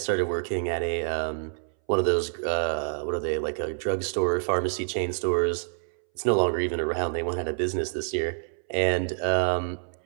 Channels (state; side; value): silent; left; 60 dB below the other